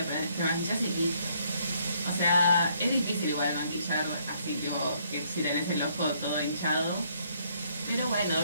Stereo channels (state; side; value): inverted; both; correlation -0.68